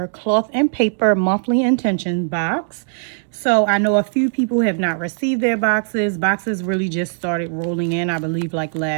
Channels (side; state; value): left; silent; 66 dB below the other